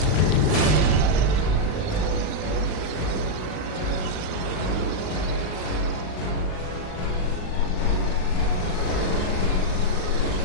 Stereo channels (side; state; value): right; late; 39 ms